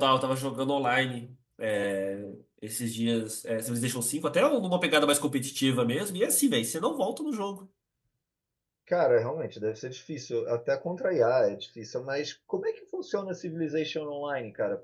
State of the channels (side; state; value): both; identical; correlation 1.00